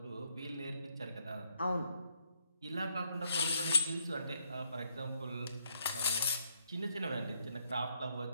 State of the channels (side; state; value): both; inverted; correlation -0.73